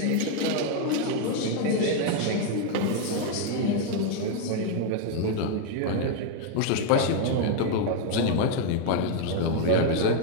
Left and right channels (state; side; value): different; both; correlation 0.00